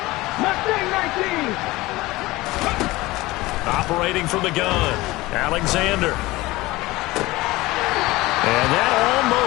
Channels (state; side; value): quieter; right; 19.8 dB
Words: Operating from the gun, Alexander. And that